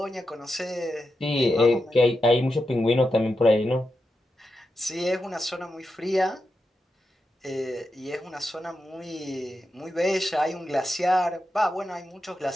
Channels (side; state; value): both; normal; correlation 0.88